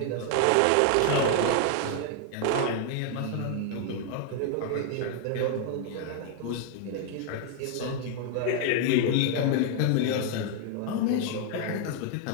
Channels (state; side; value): different; both; correlation 0.00